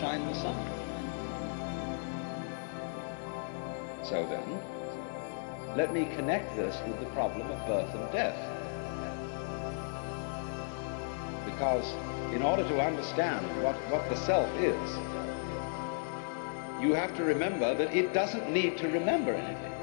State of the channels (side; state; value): right; silent; 55 dB below the other